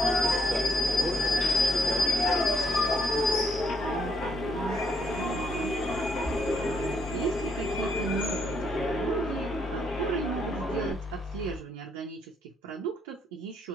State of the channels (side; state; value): both; normal; correlation 0.74